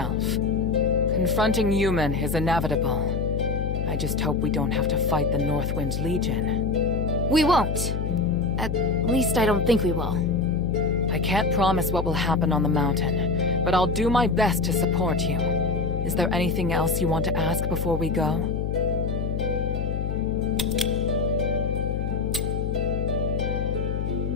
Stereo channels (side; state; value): left; noise; hum, 2 dB below the sound